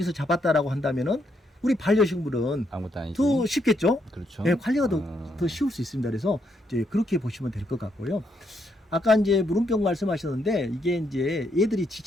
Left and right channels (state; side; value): normal; both; correlation 0.76